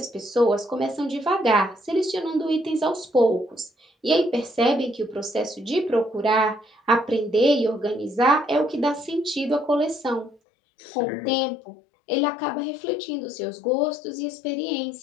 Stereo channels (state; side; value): drops out; right; at 10.4 s